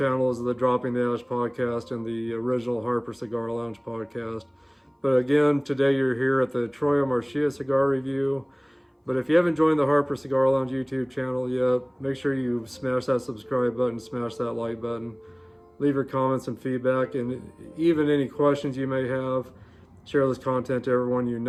is the Dropping the Ash podcast and the original Harper Cigar Lounge podcast. But again, today you're here at the Troy Marcia Cigar Review. But if you haven't joined the Harper Cigar Lounge YouTube channel yet, make sure you smash that subscribe button, smash that like button. Leave your comments and feedback, and even any questions you may have. Share this content to everyone you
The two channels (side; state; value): both; identical; correlation 1.00